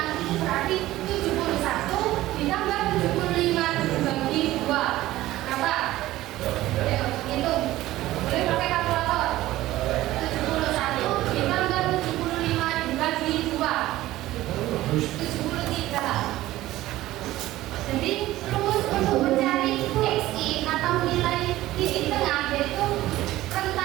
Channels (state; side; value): quieter; left; 16.0 dB